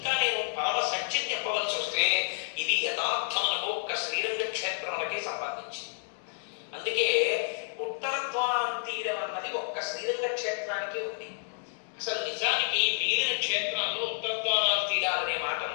నేను పరమ సత్యం చెప్పవలసి వస్తే ఇది యథార్థమునకు ఒక్క శ్రీరంగ క్షేత్రములకే సంబంధించింది. అందుకే ఉత్తరద్వారం తీరం అన్నది ఒక్క శ్రీరంగ క్షేత్రానికి ఉంది. అసలు నిజానికి మిగిలిన క్షేత్రాల్లో ఉత్తరద్వారాలు తీరాలనే మాటలు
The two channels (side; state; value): right; silent; digital silence